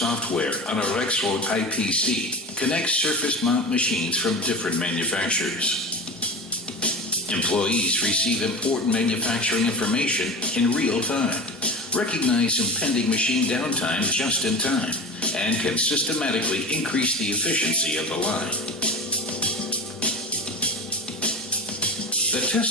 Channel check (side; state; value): both; normal; correlation 0.29